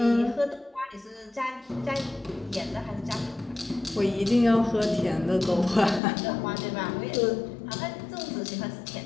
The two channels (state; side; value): drops out; right; at 6.0 s